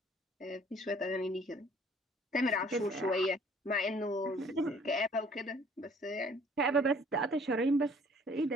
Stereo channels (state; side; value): normal; both; correlation 0.56